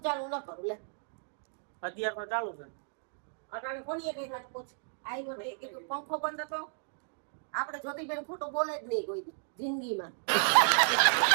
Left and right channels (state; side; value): silent; left; digital silence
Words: ચાલુ ન કરું લે અત્યારે તો ચાલુ છે. અટાણે કોની કઈ વાત પૂછ આવ્યો ને કીધું પંખો બંધ હતો. આપણે જ્યોતિબેન ખોટું બોલે જ નહીં કોઈ દી જિંદગીમાં.